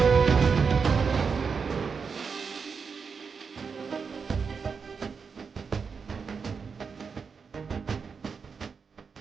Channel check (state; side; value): quieter; left; 5.6 dB